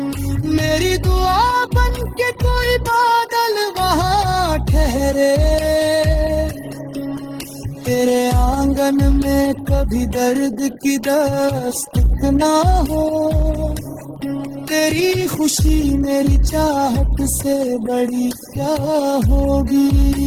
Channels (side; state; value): both; identical; correlation 1.00